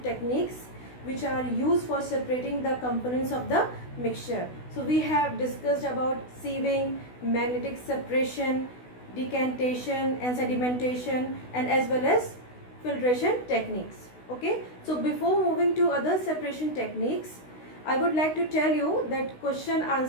techniques which are used for separating the components of the mixture. So we have discussed about sieving, magnetic separation, decantation and sedimentation, and as well as filtration techniques. Okay, so before moving to other separation techniques, I would like to tell you that question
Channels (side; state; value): right; late; 16 ms